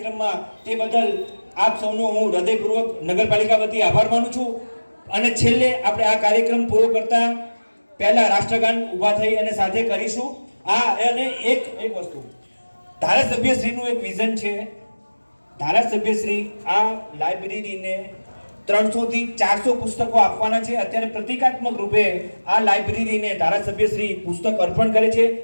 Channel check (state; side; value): inverted; both; correlation -1.00